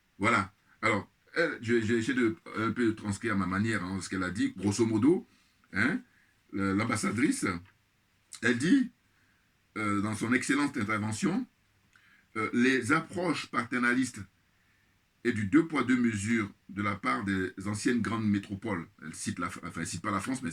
Voilà. Alors, j'ai essayé de un peu transcrire à ma manière ce qu'elle a dit, grosso modo. Hein, l'ambassadrice, elle dit, dans son excellente intervention, les approches paternalistes et du deux poids deux mesures de la part des anciennes grandes métropoles. Elle cite elle cite pas la France, mais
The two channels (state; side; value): identical; both; correlation 1.00